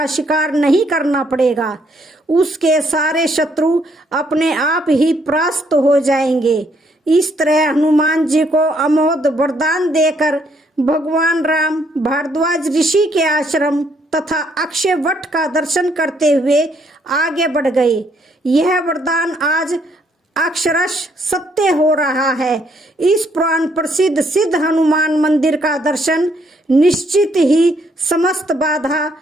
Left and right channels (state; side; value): normal; both; correlation 0.70